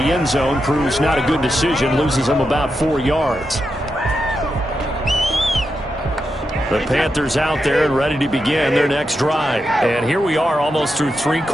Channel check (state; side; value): normal; both; correlation 0.86